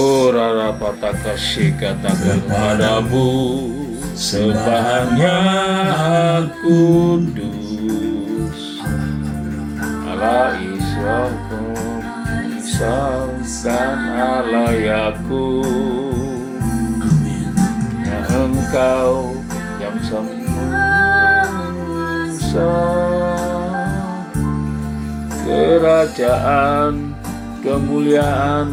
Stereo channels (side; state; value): both; identical; correlation 1.00